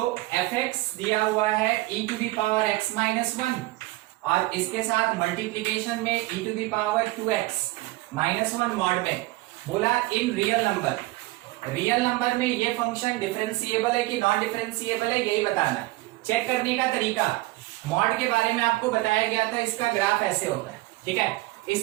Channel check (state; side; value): quieter; left; 20.0 dB